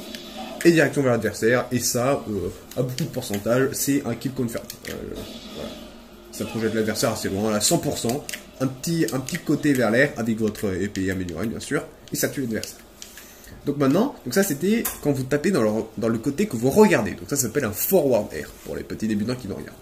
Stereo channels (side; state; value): both; identical; correlation 1.00